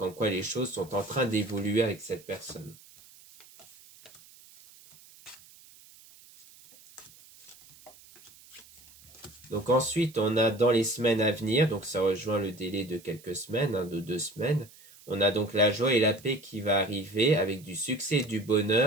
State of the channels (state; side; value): noise; right; hiss, 24 dB below the sound